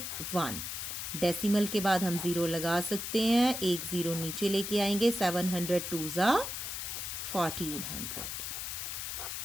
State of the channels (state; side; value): noise; left; hiss, 5 dB below the sound